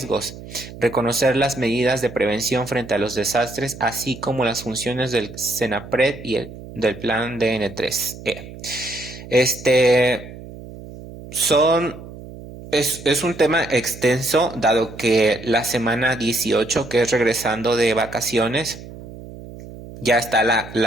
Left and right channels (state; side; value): noise; right; hum, 15 dB below the sound